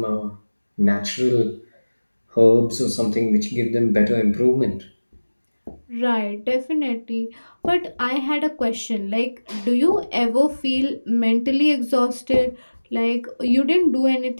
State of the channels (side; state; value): both; inverted; correlation -1.00